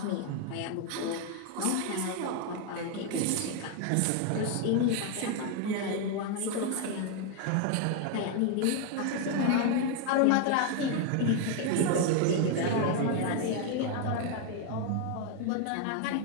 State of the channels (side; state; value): both; different; correlation 0.00